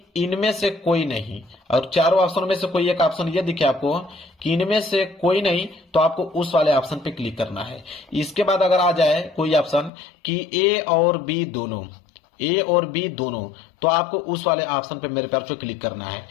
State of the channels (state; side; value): drops out; right; at 9.9 s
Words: इनमें से कोई नहीं, और चारों ऑप्शनों में से कोई एक ऑप्शन ये दिखे आपको कि इनमें से कोई नहीं, तो आपको उस वाले ऑप्शन पे क्लिक करना है। इसके बाद अगर आ जाए कोई ऑप्शन कि ए और बी दोनों, ए और बी दोनों, तो आपको उस वाले ऑप्शन पे मेरे प्यारे क्लिक करना है।